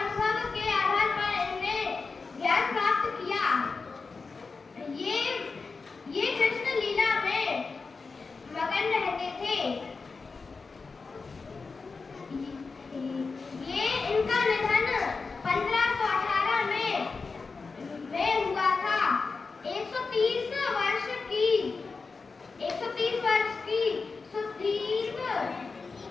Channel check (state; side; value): quieter; right; 4.4 dB